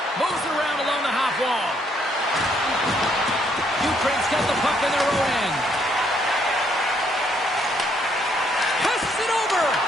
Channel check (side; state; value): both; normal; correlation 0.70